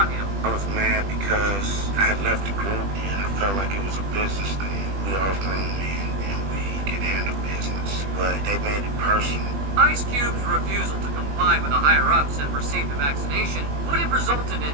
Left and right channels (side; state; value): left; late; 20 ms